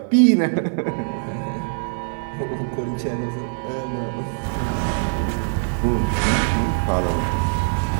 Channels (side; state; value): left; silent; digital silence